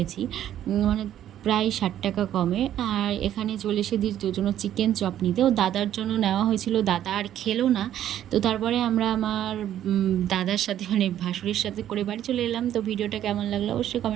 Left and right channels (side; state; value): left; quieter; 11.3 dB